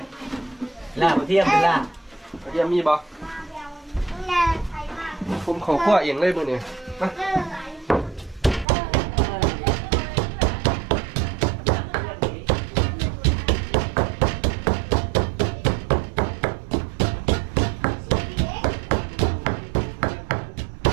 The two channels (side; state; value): left; drops out; at 8.7 s